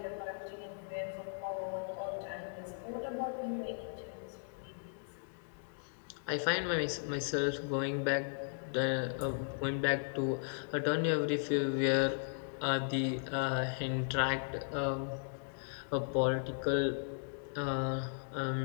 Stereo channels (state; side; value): silent; right; digital silence